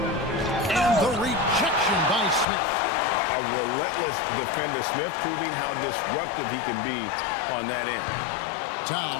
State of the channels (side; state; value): right; drops out; at 2.5 s